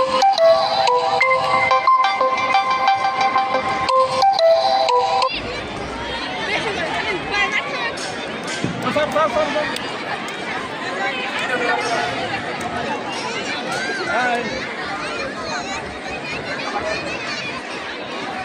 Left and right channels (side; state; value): both; identical; correlation 1.00